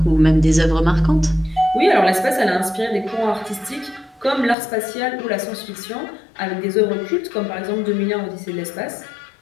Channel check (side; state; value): right; drops out; at 4.5 s